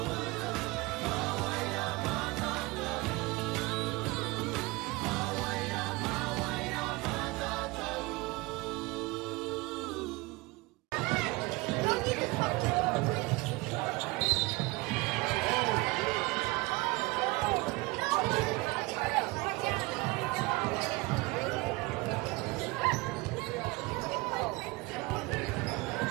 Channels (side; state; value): left; quieter; 23.7 dB